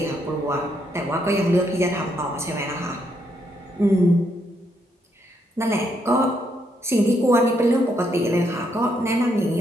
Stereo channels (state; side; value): normal; both; correlation 0.75